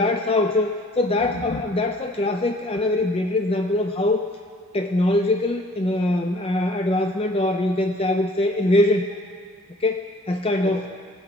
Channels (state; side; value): normal; both; correlation 0.54